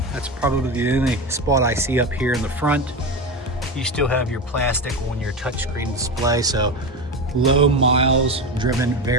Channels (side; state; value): both; normal; correlation 0.21